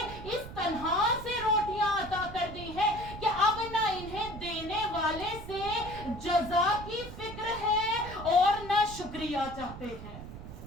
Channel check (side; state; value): right; noise; rumble, 12 dB below the sound